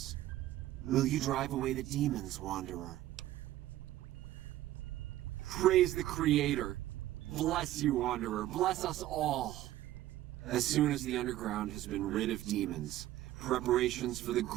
Will you drive away the demons, Wanderer? Praise the Creator. Bless you, Wanderer. Bless us all. As soon as the underground has been rid of demons, preparations for the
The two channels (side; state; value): left; quieter; 14.3 dB